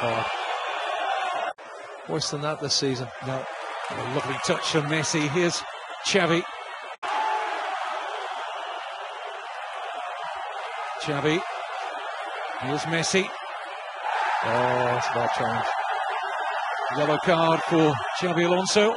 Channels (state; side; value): identical; both; correlation 1.00